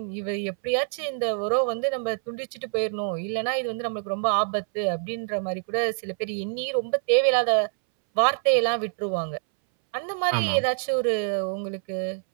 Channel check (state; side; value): silent; left; 61 dB below the other